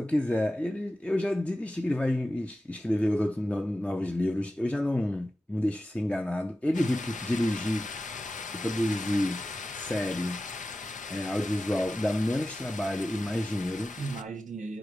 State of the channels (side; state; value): both; normal; correlation 0.93